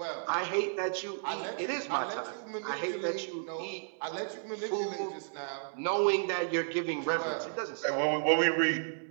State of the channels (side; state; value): left; silent; 56 dB below the other